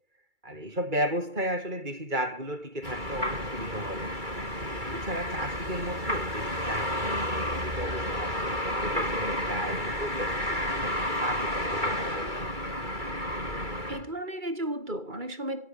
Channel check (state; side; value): late; left; 2.3 ms